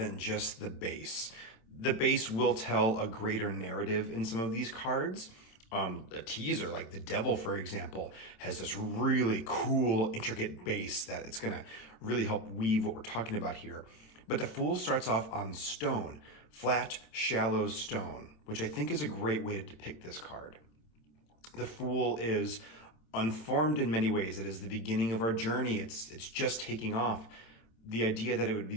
just the base. The base will tell a greater narrative in some of these cards. A teaser, like the Devil, for example, has this really cool, intricate base that it's going to really help weave what we're talking about here. But the Fool starts off on stone, flat, shallow stone, which I think is a great way to depict this card. The Fool is unformed in many ways. It is the beginning of our journey. It's just taking off. The idea that it would be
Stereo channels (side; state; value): right; late; 26 ms